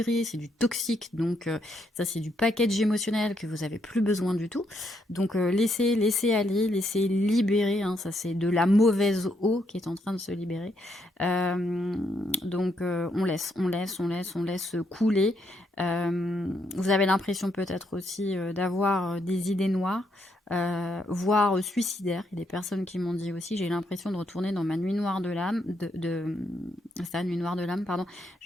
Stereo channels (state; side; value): normal; both; correlation 0.76